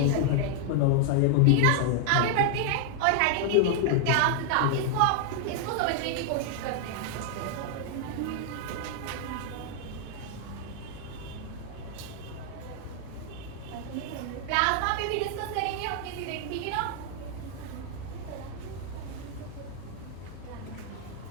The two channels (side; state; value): both; different; correlation 0.00